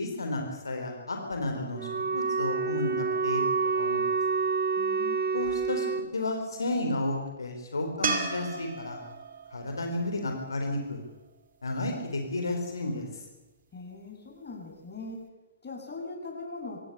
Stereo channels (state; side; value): inverted; both; correlation -0.40